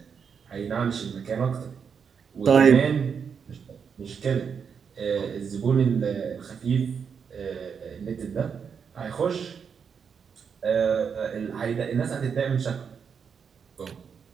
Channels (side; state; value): left; quieter; 6.6 dB